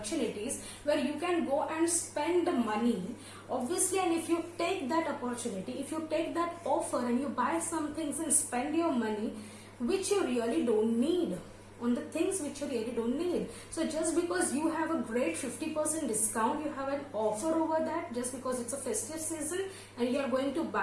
where you can go and spend the money, obviously, and if you take that opportunity, if you take that offer and you buy some things and spend your money which you really don't need, on the things which you really don't need. So just because you have a great 50% discount, you have an offer over that, just because it's a festive season and you are going to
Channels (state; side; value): identical; both; correlation 1.00